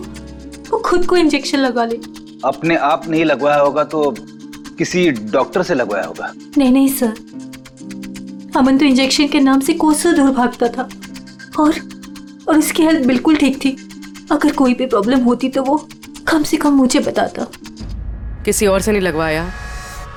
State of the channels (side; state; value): both; identical; correlation 1.00